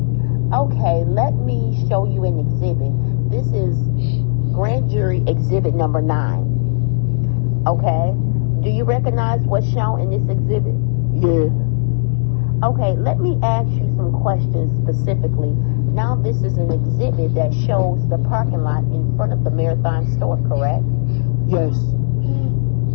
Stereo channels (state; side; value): silent; right; digital silence